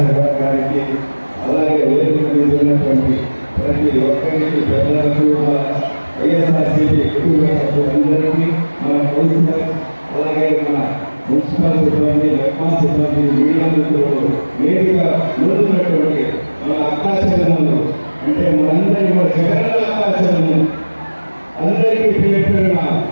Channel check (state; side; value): inverted; both; correlation -1.00